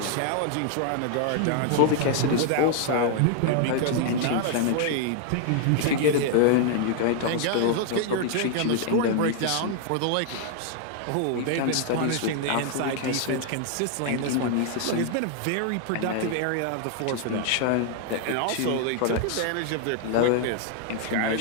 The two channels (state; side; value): different; both; correlation 0.00